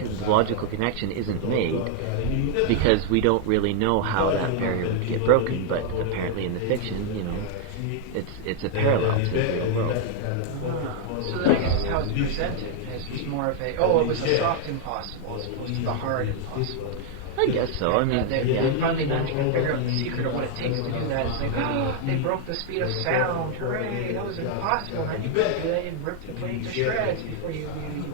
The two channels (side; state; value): both; different; correlation 0.00